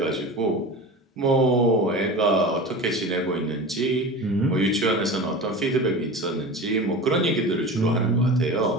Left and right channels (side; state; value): both; normal; correlation 0.32